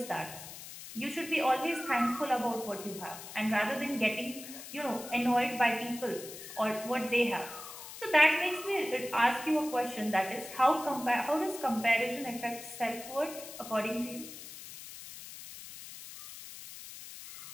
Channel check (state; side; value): noise; left; hiss, 13 dB below the sound